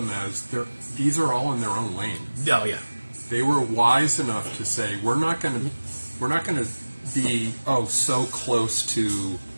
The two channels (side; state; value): both; inverted; correlation -1.00